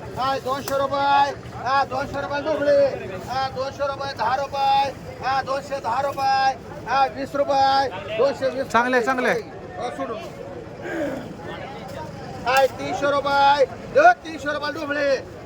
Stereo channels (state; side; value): identical; both; correlation 1.00